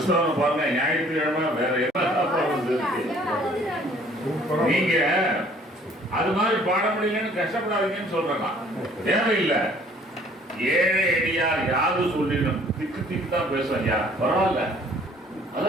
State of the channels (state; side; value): normal; both; correlation 0.57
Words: பாருங்க, ஞாயிற்றுக்கிழமை வேற என்ன நீங்க அது மாதிரி பாட முடியலன்னு கஷ்டப்படாதீங்கன்னு சொல்றாங்க. தேவையில்லை. ஏழை அடியார் யாது சொல்லிடும் திக்கு திக்கு தான் பேசும். ஐயா பரவாயில்ல, அதை